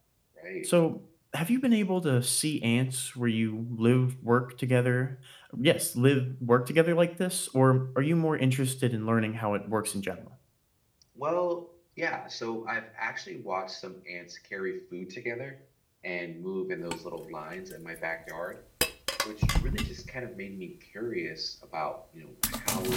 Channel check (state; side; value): identical; both; correlation 1.00